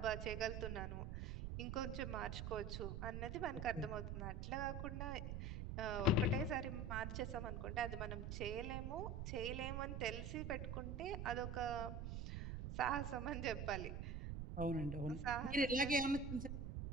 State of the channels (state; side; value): noise; right; rumble, 4 dB below the sound